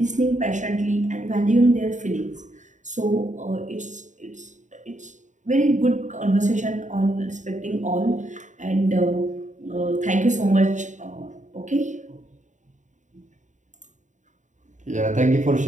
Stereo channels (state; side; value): late; left; 0.36 ms